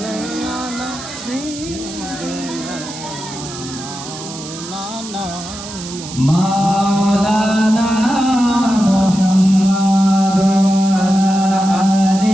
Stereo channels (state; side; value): noise; right; hiss, 12 dB below the sound